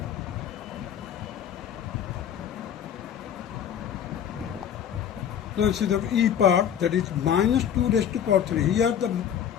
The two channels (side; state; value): right; quieter; 9.0 dB